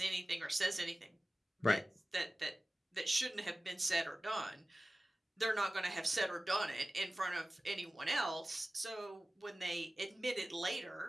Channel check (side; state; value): both; normal; correlation 0.96